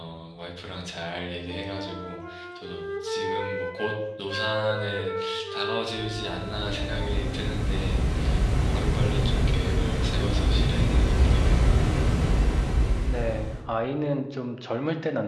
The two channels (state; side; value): identical; both; correlation 1.00